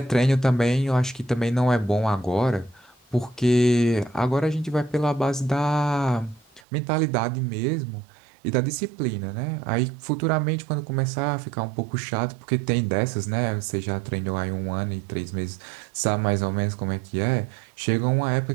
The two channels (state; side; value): drops out; left; at 6.6 s